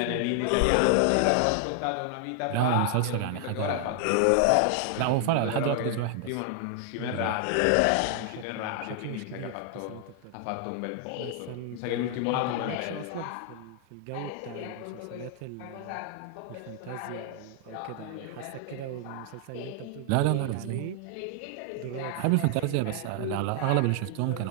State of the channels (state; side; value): different; both; correlation 0.00